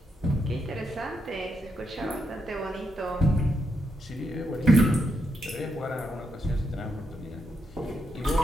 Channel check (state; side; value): normal; both; correlation 0.81